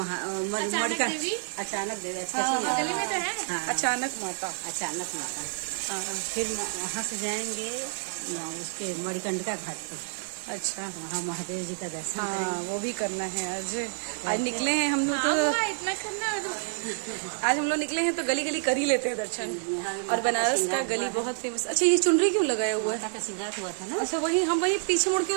अचानक देवी। बगल में तो है। हाँ, अचानक माता। अचानक माता। हाँ। फिर वहाँ से जाएंगे उसके मणिकंडिका घाट पर। अच्छा, वहाँ महादेव जी का दर्शन। हाँ वो भी करना है। आज निकले हैं हम लोग तो इतना करना है तो आज हम लोग निकले हैं तो गली गली कर ही लेते हैं दर्शन। और बनारस का गली बहुत फेमस। अच्छा, ये चुनरी क्यों लगाया हुआ है? श्रृंगार हुआ था ना। अच्छा, वही हम वही पीछे मुड़ के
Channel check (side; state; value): left; silent; digital silence